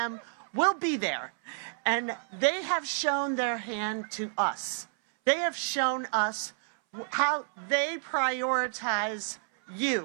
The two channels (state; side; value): silent; left; 58 dB below the other